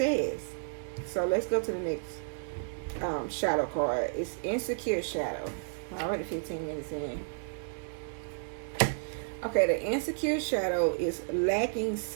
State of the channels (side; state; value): left; silent; digital silence